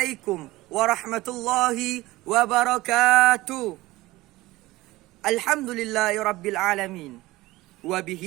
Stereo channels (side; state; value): left; quieter; 18.8 dB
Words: warahmatullahi wabarakatuh. Alhamdulillahi rabbil alamin.